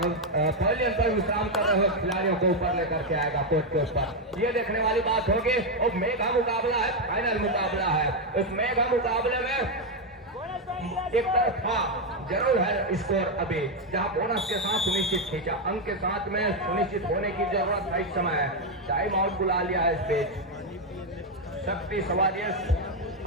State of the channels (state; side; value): normal; both; correlation 0.04